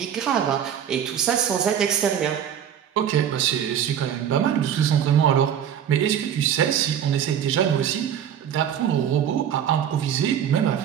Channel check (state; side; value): quieter; left; 9.2 dB